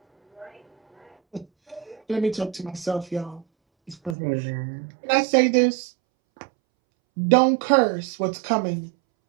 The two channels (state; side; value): drops out; left; at 4.2 s